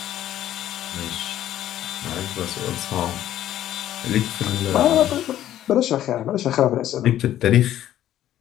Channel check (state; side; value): quieter; right; 12.3 dB